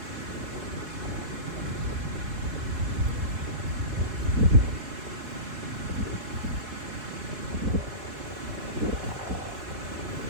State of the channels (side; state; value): left; late; 4.2 ms